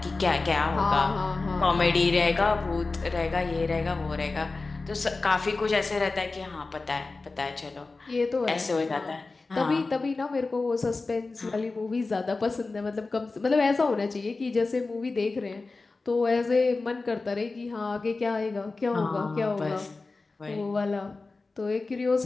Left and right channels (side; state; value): right; quieter; 3.7 dB